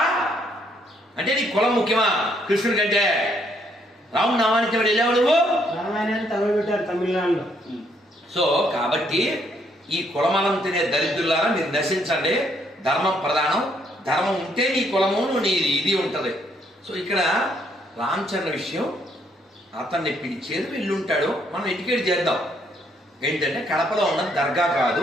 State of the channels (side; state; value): both; normal; correlation 0.70